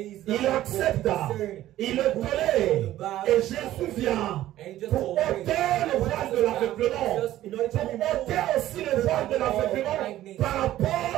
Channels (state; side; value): quieter; left; 14.0 dB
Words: Il accepte, il le tolère. Et Jésus vient pour ôter le voile de l'aveuglement, pour ôter aussi le voile de l'aveuglement par rapport